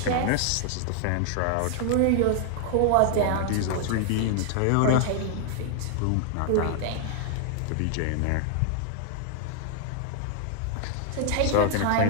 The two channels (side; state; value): both; different; correlation 0.00